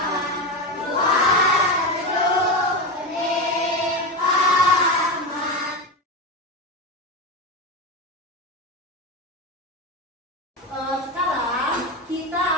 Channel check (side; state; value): both; normal; correlation 0.17